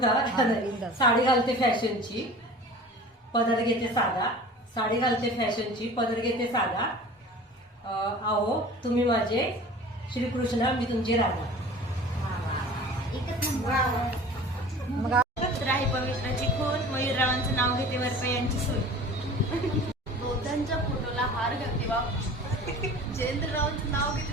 साडी घालते फॅशनची, पदर घेते साधा. साडी घालते फॅशनची, पदर घेते साधा. आहो तुम्ही माझे श्रीकृष्ण, मी तुमची राधा. मग राही पवित्राची खून, मयूररावांचं नाव घेते, वरपयांची सून. दोघांच्या फोटोला हार घालते बा. जयेंद्ररावांचं नाव घेते,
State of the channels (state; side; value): normal; both; correlation 0.41